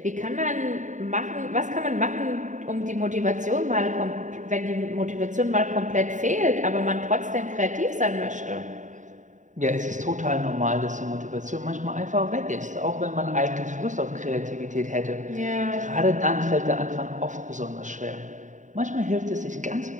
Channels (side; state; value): left; late; 0.36 ms